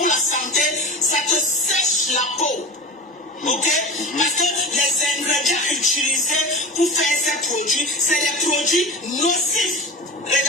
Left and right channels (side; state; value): both; normal; correlation 0.32